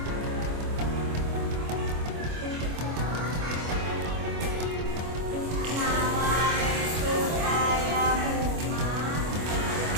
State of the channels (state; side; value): late; left; 25 ms